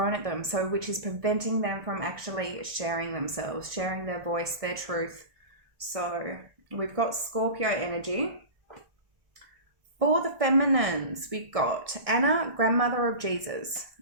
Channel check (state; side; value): late; left; 1.6 ms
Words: at them, so which is preventing them from actually sharing themselves, sharing their voice, their truth. So we've got Scorpio energy. For the feminines, we've got Anna, grandmother of Jesus.